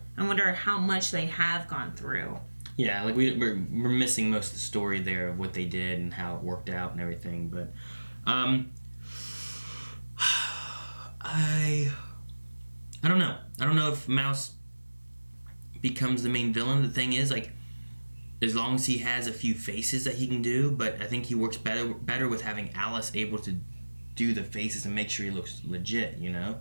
I wonder how much they have gone through. Yeah, we're missing most of the story there of what they did and how it worked out and everything, but I don't know. I don't know if Mouse becomes the main villain. The thing is, as long as he has a few faces that he can do, but I think he works better with having Alice able to do the faces and make sure he looks legit,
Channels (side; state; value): both; inverted; correlation -1.00